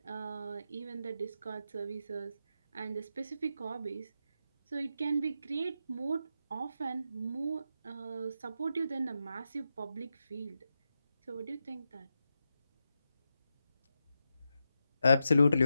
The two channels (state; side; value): inverted; both; correlation -0.87